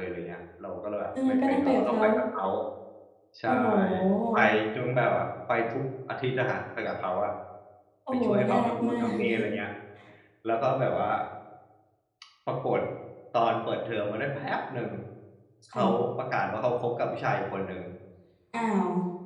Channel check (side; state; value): both; identical; correlation 1.00